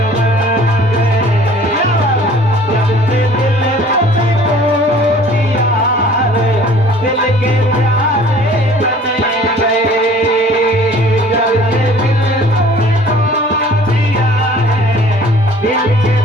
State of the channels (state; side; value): normal; both; correlation 0.51